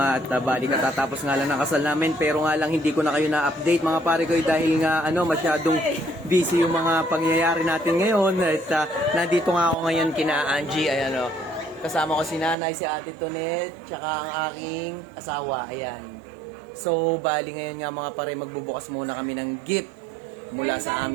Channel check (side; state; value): left; drops out; at 12.6 s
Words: at bali katatapos nga lang ng kasal namin, pero nga lang hindi ko na kayo na-update mga pare ko dahil nga masyadong busy yung mga pangyayari natin ngayon. At nandito nga ako ngayon kina Angie, ayan kasama ko si nanay, si ate Tonet, tsaka ang aking asawa, ayan. So bali ngayon nga mga pare, magbubukas muna kami ng gift mula sa